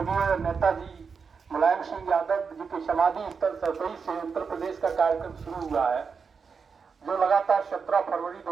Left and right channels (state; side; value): quieter; left; 5.6 dB